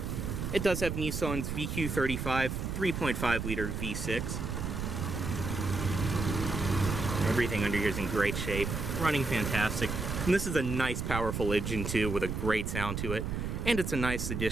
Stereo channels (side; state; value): right; noise; rumble, 3 dB below the sound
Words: it does have Nissan's VQ35 3.5 liter V6. Everything under here is in great shape, running fantastic. And this is a nice powerful engine too, with a great sound to it. And it's a nice